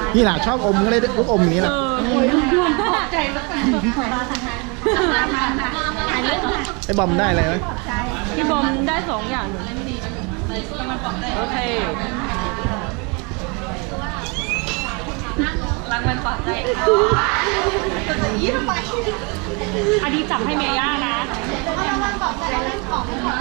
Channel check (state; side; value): quieter; left; 31.2 dB